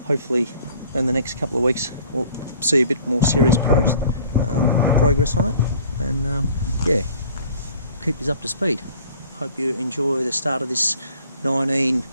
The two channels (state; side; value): inverted; both; correlation -0.52